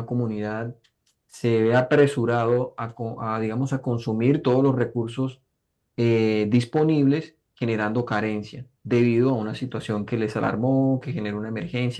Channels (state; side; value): identical; both; correlation 1.00